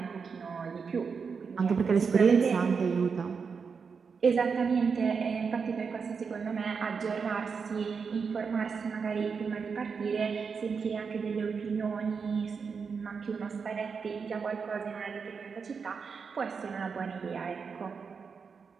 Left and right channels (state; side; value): quieter; left; 5.6 dB